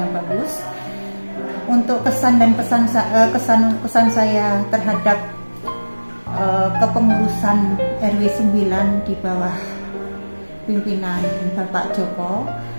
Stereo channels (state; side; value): inverted; both; correlation -1.00